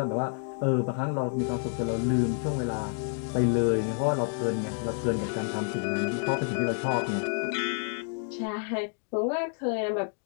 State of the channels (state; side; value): silent; right; 58 dB below the other